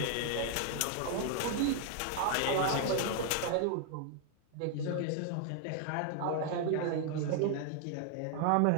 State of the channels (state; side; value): different; both; correlation 0.00